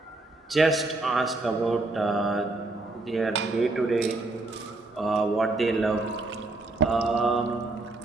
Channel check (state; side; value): quieter; left; 3.1 dB